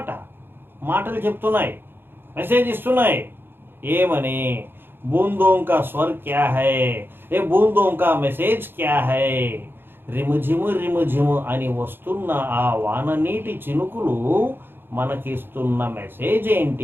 మాటలు చెప్తున్నాయి, మెసేజ్ ఇస్తున్నాయి. ఏమని? బూందోं का स्वर क्या है, ఏ బూందోं का మెసేజ్ క్యా హై. రిముజిము రిముజిము అని వస్తున్న ఆ వాన నీటి చినుకులు మనకిస్తున్న మెసేజ్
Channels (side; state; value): left; late; 0.10 ms